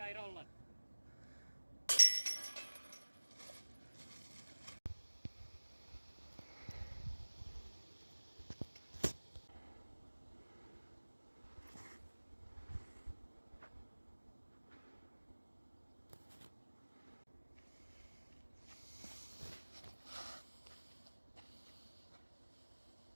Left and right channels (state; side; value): inverted; both; correlation -1.00